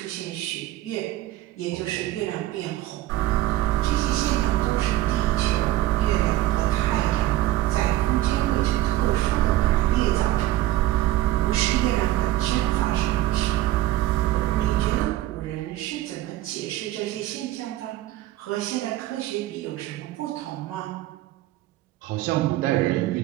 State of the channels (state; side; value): quieter; left; 15.5 dB